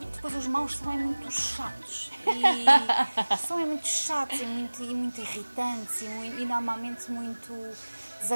Depois, os maus são muito chatos. São muito chatos e muito irritantes e normalmente muito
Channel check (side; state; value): both; inverted; correlation -1.00